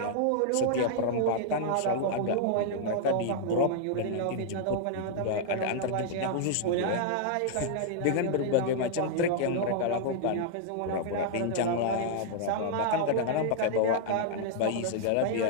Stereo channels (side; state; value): both; different; correlation -0.01